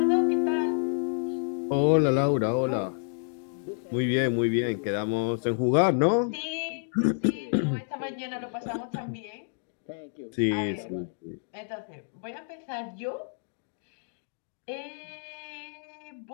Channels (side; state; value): right; silent; digital silence